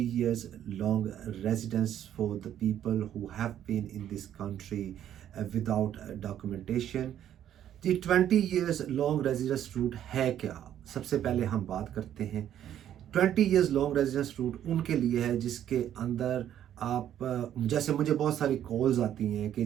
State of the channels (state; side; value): quieter; left; 10.7 dB